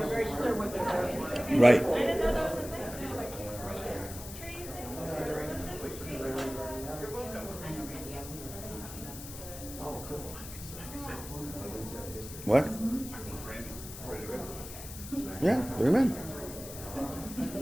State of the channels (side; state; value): left; noise; hiss, 12 dB below the sound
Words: Right. What? Yeah, bring them in.